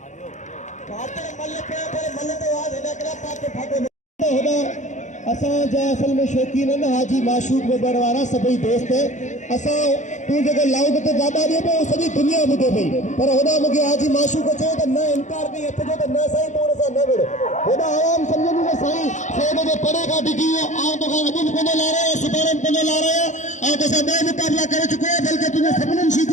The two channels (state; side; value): late; right; 0.35 ms